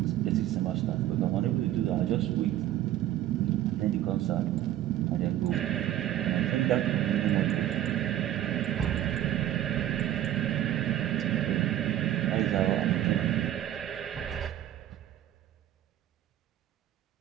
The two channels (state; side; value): quieter; left; 12.6 dB